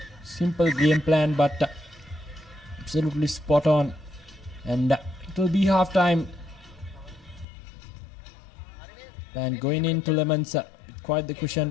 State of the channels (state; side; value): drops out; right; at 7.5 s